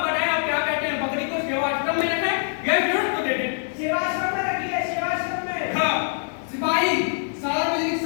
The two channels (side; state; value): right; silent; digital silence